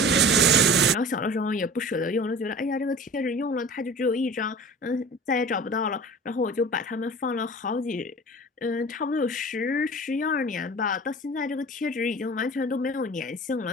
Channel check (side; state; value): both; normal; correlation 0.40